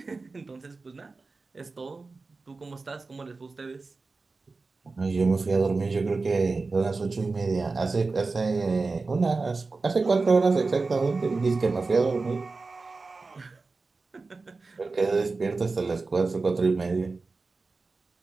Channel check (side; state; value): left; quieter; 3.9 dB